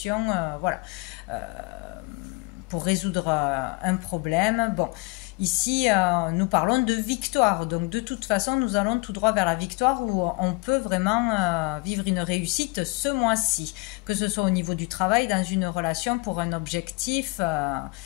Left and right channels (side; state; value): right; quieter; 26.0 dB